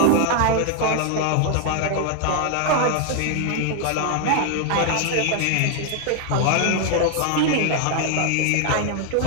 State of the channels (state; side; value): different; both; correlation 0.00